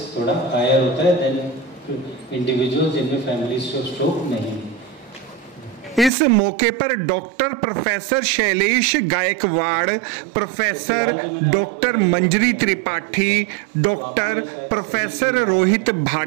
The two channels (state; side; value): drops out; left; at 6.1 s